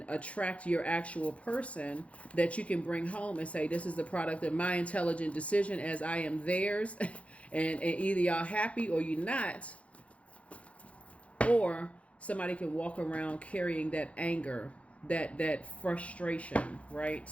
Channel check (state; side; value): late; right; 0.063 ms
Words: attract your actual person that you can bring home and say, this is the product of my intelligent decision as I am theirs. and either y'all happy or you're not. Or somebody can walk around carrying that anger, that frustration, right?